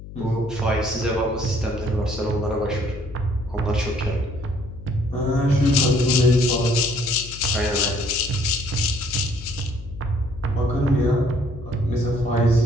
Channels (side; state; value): left; noise; hum, 14 dB below the sound